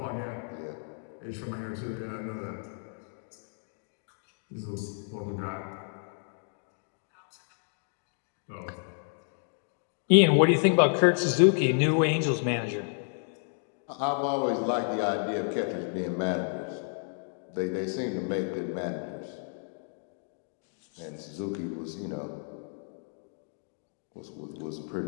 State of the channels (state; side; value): silent; right; 57 dB below the other